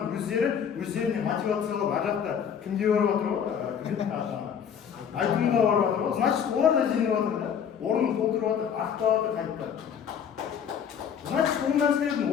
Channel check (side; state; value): right; quieter; 7.9 dB